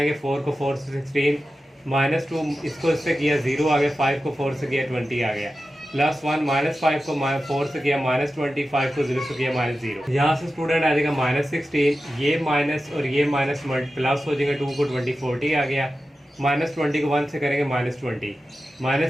4 को 4 से 16, -2 इसको इससे किया 0 आ गया, 5 को 4 से किया 20 आ गया, +1 -5 को 4 से किया -20, 5 को 0 से किया -0। यहाँ से स्टूडेंट आ जाएगा -16, ये माइनस और ये माइनस प्लस हो जाएगा, 2 को 20 40 आ गया, -20 को 1 से करेंगे -20,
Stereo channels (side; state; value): both; normal; correlation 0.93